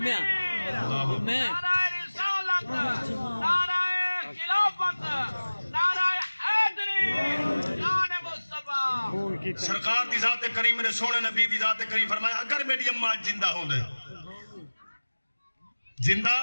میں نعرہ رسالت، نعرہ خلافت، نعرہ حیدری، شان مصطفیٰ. سرکار دی ذات کریم نے سونے نبی دی ذات کریم فرمایا اگر میری اماں زندہ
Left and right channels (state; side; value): inverted; both; correlation -1.00